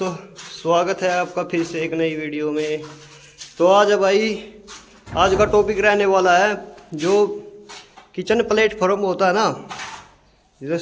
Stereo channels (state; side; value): identical; both; correlation 1.00